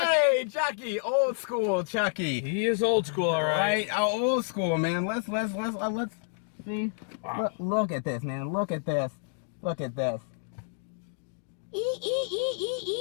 Hey, Chucky! Old school Chucky. He is old school, all right. Right? Old school, man. Let's see. Wow. Look at this, man. Look at this. Look at this.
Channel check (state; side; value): silent; right; digital silence